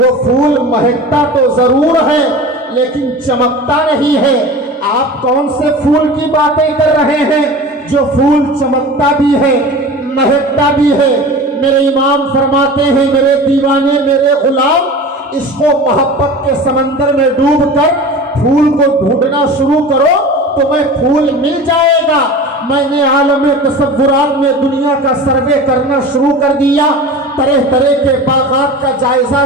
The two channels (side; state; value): both; normal; correlation 0.35